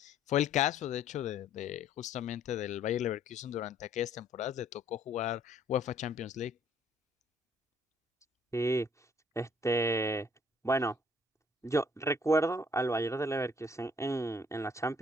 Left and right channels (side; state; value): both; normal; correlation 0.61